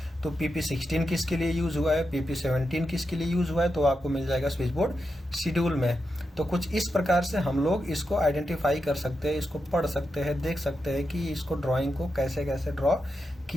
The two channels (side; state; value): both; normal; correlation 0.87